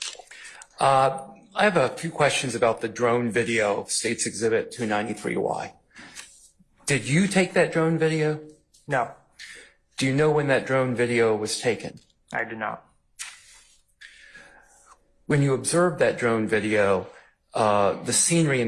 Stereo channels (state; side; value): identical; both; correlation 1.00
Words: I have a few questions about the drone video of State's Exhibit 293Y. Did you take that drone video? No, Do you know when that drone video was taken? I do not. When you observed that drone video, the scenery